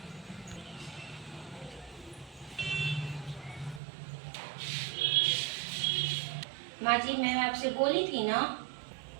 माँ जी मैं आपसे बोली थी ना,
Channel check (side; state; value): left; drops out; at 3.8 s